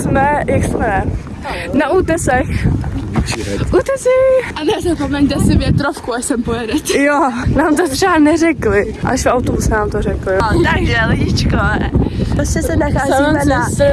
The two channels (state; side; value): identical; both; correlation 1.00